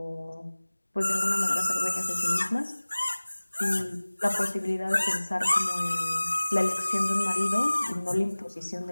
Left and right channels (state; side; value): inverted; both; correlation -1.00